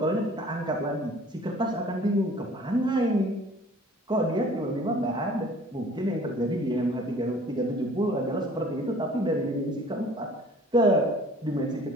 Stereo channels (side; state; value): both; normal; correlation 0.50